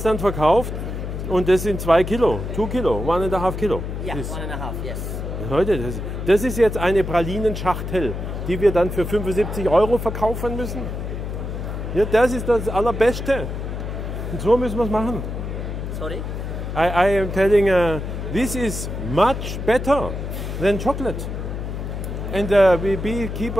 dann verkauft. Und das sind 2 Kilo, 2 Kilo, 1,5 Kilo. Ja, Das- 1,5, yes. Leute, das ist jetzt eine Pralinenschachtel, die wir dann für 75 € verkaufen müssen. Ja, das ist das Allerbeste. Und so müssen wir es machen. Sorry? I am telling, this is much better than chocolate. And we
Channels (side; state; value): left; noise; hum, 5 dB below the sound